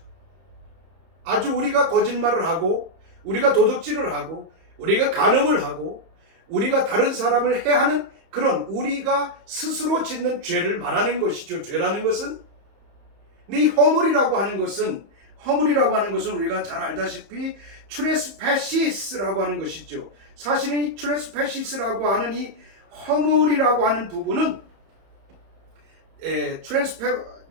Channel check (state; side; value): late; left; 31 ms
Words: 아주 우리가 거짓말을 하고 우리가 도둑질을 하고 우리가 간음을 하고 우리가 다른 사람을 해하는 그런 우리가 스스로 짓는 죄를 말하는 것이죠. 죄라는 것은. 근데 이 허물이라고 하는 것은 우리가 잘 알다시피 트레스패시스라고 하는 것이죠. 사실은 이 트레스패시스라고 하는 이 허물이라고 하는 부분은